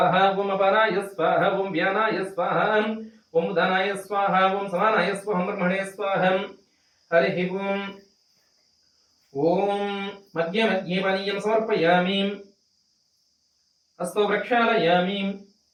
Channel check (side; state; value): both; identical; correlation 1.00